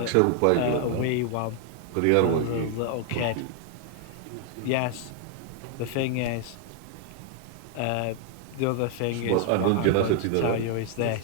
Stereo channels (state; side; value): different; both; correlation 0.00